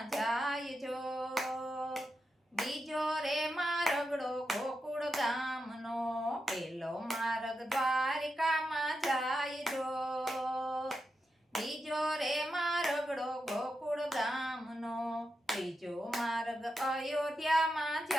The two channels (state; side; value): normal; both; correlation 0.87